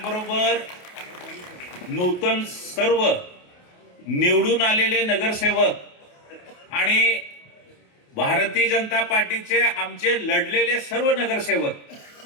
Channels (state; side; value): late; right; 28 ms